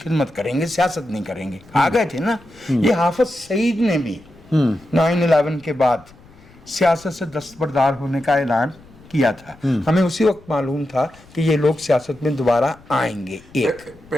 خدمت کریں گے، سیاست نہیں کریں گے. آ گئے تھے نا. یہ حافظ سعید نے بھی 9/11 کے بعد سیاست سے دستبردار ہونے کا اعلان کیا تھا. ہمیں اسی وقت معلوم تھا کہ یہ لوگ سیاست میں دوبارہ آئیں گے. ایک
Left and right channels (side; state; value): left; noise; rumble, 25 dB below the sound